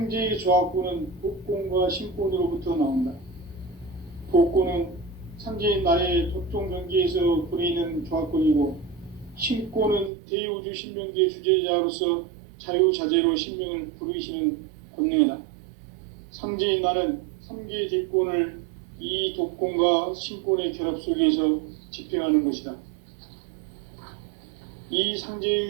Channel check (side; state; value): left; drops out; at 10.1 s